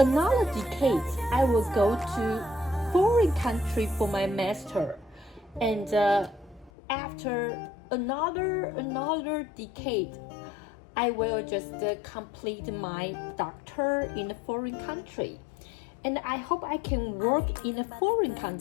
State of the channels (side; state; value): right; drops out; at 6.7 s